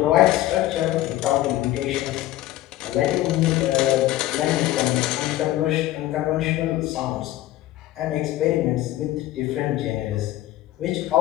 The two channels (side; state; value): right; quieter; 15.1 dB